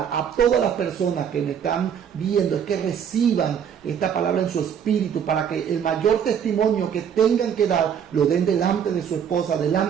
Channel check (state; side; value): quieter; left; 8.2 dB